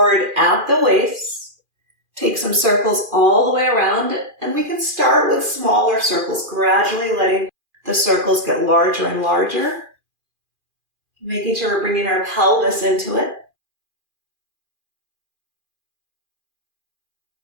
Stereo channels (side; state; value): left; late; 2.4 ms